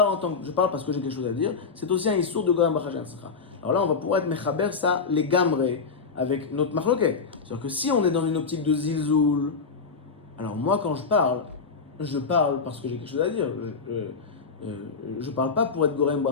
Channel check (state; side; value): quieter; right; 5.0 dB